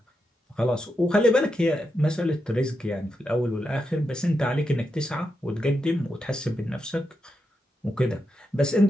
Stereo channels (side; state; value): both; normal; correlation 0.85